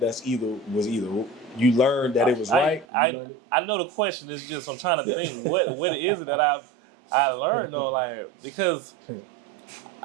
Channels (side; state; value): left; drops out; at 2.9 s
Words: either you learned that it was right. You learned it. I know the question is just I'm trying to think what it is that I learned though, like, because